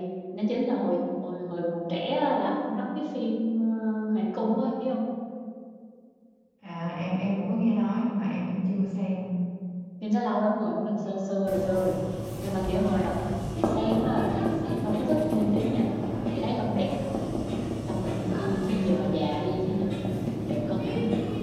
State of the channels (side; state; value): both; identical; correlation 1.00